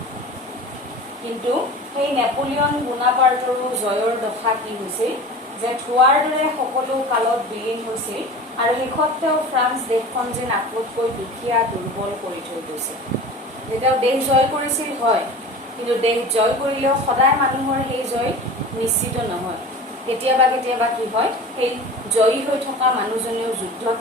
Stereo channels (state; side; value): normal; both; correlation 0.36